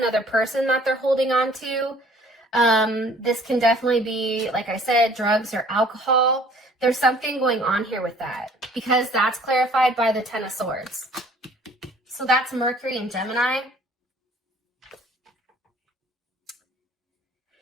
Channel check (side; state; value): both; normal; correlation 0.55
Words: person that they're holding on to. This can definitely be, like I said, drugs or alcohol. There's something going on here with that, because that's clarified by the Ten of Swords. So that's Mercury and Gemini.